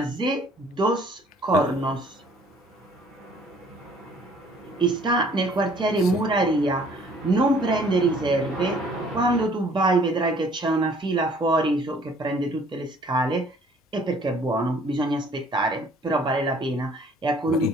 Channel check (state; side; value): normal; both; correlation 0.57